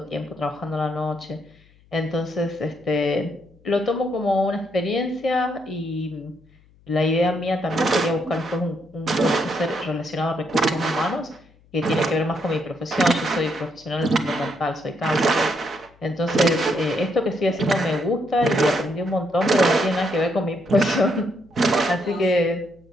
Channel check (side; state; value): left; noise; hum, 29 dB below the sound